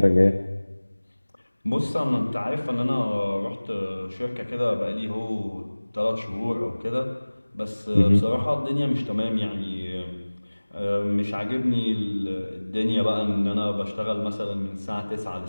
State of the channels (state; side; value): inverted; both; correlation -1.00